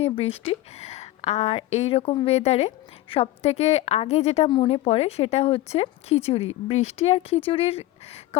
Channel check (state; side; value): quieter; right; 16.0 dB